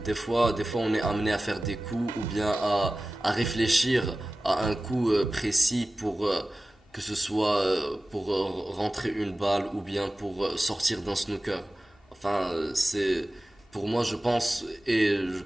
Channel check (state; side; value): normal; both; correlation 0.96